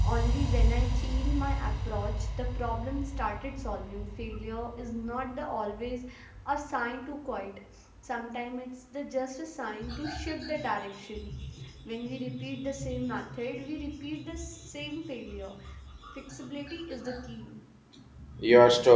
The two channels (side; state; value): both; identical; correlation 1.00